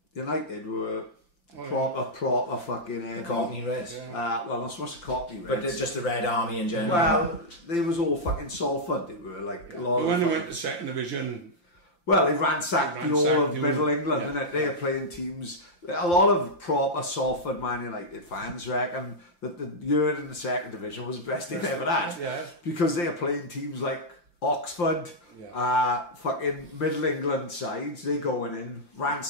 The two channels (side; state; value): right; late; 5.8 ms